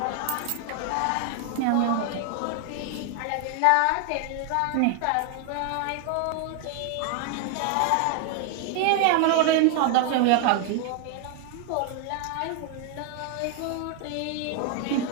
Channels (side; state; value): both; different; correlation 0.00